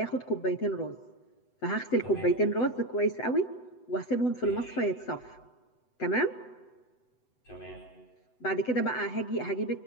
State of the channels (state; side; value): late; right; 8.0 ms